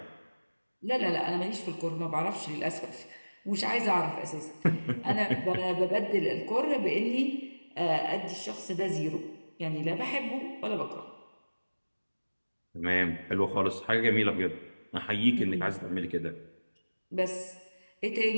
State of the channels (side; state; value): both; inverted; correlation -1.00